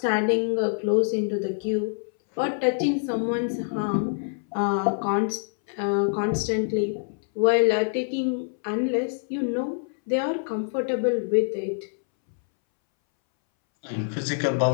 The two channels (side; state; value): right; silent; 61 dB below the other